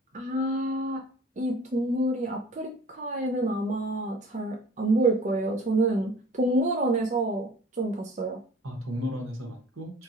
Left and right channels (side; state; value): both; normal; correlation 0.47